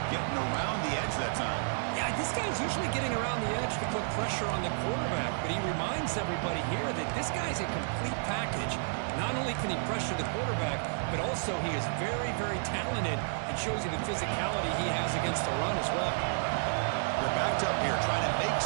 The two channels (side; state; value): left; silent; 57 dB below the other